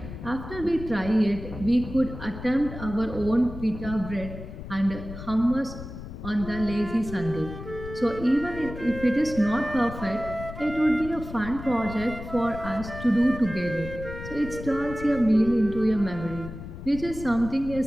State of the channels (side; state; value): left; noise; rumble, 11 dB below the sound